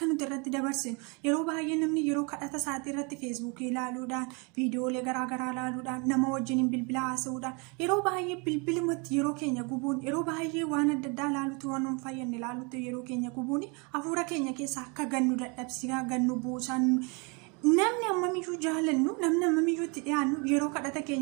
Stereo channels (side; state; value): left; quieter; 31.6 dB